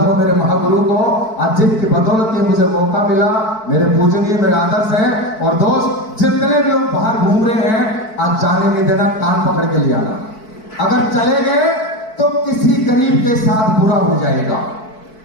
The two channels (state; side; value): late; right; 4.6 ms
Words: हो मेरे महागुरु को, आज जिनकी बदौलत ये मुझे मौका मिला। मेरे पूजनीय मेरे आदर्श हैं। और दोस्त जितने भी लोग बाहर घूम रहे हैं, आज जाने नहीं देना, कान पकड़ के ले आना। अगर चले गए तो किसी गरीब के साथ बुरा हो जाएगा।